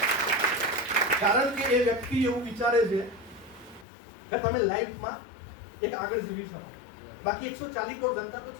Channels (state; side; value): drops out; right; at 3.9 s